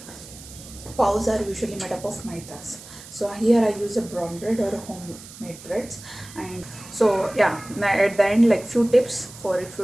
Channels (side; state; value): right; noise; hiss, 17 dB below the sound